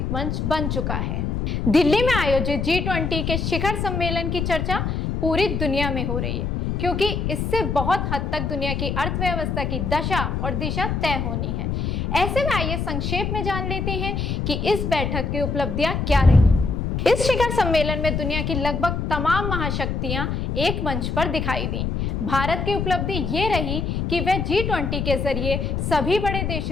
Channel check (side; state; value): left; noise; rumble, 1 dB below the sound